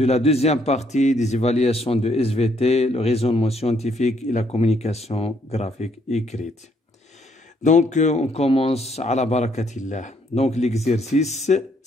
la deuxième partie des évaluations de SVT, le raisonnement scientifique et la communication graphique écrite. Donc on commence à la barakatillah. Donc l'exercice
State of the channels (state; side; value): normal; both; correlation 0.69